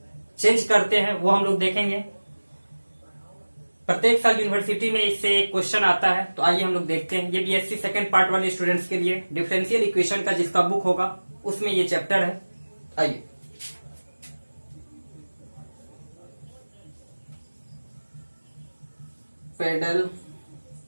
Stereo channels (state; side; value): inverted; both; correlation -1.00